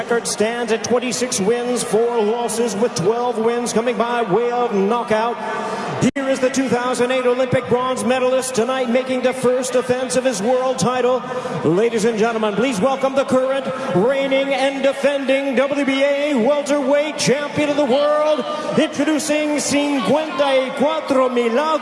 stands at 26 wins, 4 losses, with 12 wins coming by way of knockout. Here is the 2008 Olympic bronze medalist tonight, making the first defense of his world title. Ladies and gentlemen, please welcome the current, reigning and defending WBA welterweight champion of the world, introducing 54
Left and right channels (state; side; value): identical; both; correlation 1.00